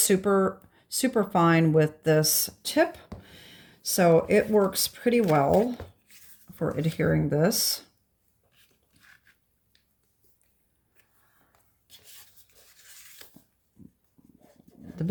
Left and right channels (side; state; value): both; identical; correlation 1.00